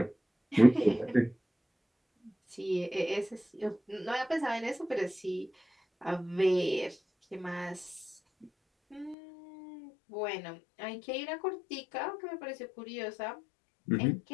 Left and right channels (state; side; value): drops out; right; at 9.2 s